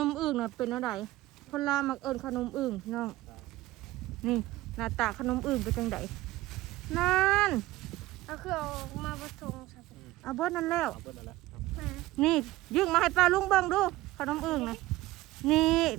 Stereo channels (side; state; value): left; quieter; 17.6 dB